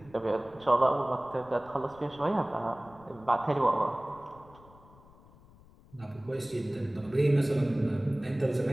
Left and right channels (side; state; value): left; noise; rumble, 25 dB below the sound